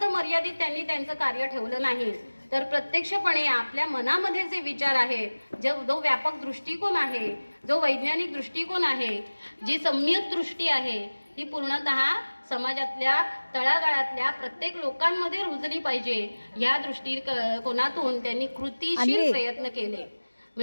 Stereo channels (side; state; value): both; inverted; correlation -1.00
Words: मर्यादित त्यांनी त्यांचं कार्य ठेवलं नाही, तर प्रत्यक्षपणे आपल्या मनामध्ये जे विचार आहेत, जो व्यापक दृष्टिकोन आहे, जो वैज्ञानिक दृष्टिकोन आहे, जी सम्यक दृष्टी आहे, ही पूर्णतः समाजातल्या तळागाळातल्या प्रत्येक लोकांमध्ये रुजली पाहिजे या दृष्टिकोनातून त्यांनी कृतिशील प्रयत्न केले.